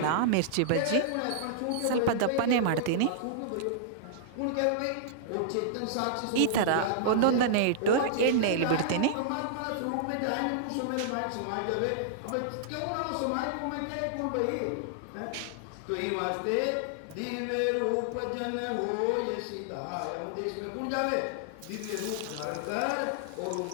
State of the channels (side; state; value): both; different; correlation -0.01